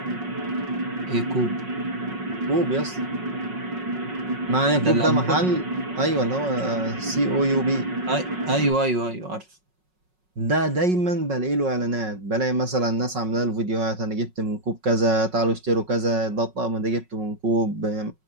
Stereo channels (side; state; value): left; late; 5.4 ms